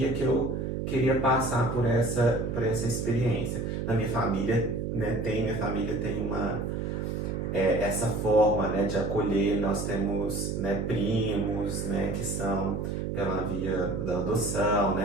que eu queria passar por essa experiência. Na minha família, né, minha família tem essa forma, né, de acolher. Nós temos, né, primos, né, que são pela via da adoção,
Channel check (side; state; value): right; noise; hum, 2 dB below the sound